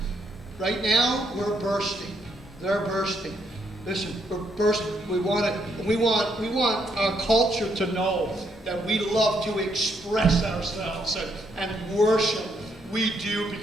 Right now, we're bursting. They're bursting. Listen, we're bursting. We want our culture to know that we love to express ourselves and worship. We do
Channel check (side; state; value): both; normal; correlation 0.74